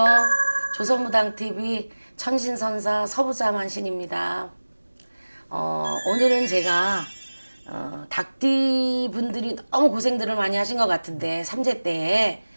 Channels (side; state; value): both; inverted; correlation -1.00